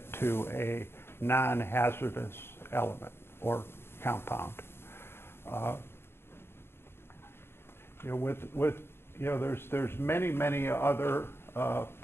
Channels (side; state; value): right; late; 0.11 ms